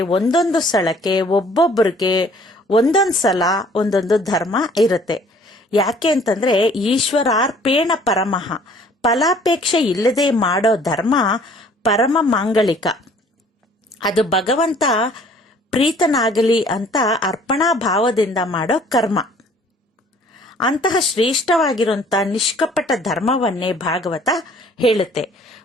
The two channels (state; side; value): normal; both; correlation 0.55